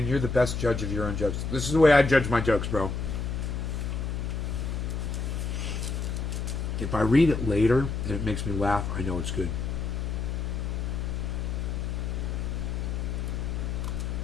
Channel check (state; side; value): noise; left; hum, 2 dB below the sound